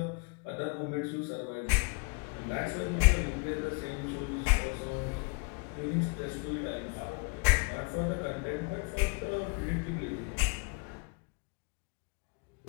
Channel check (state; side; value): quieter; right; 34.9 dB